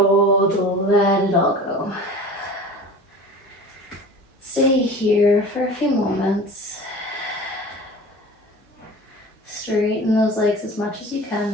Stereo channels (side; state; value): both; normal; correlation 0.39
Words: let it all go. Stay here for a few moments. Straighten those legs as much as you